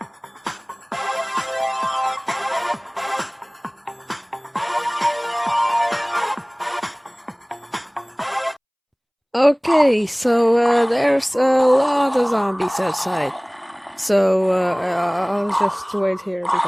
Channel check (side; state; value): both; identical; correlation 1.00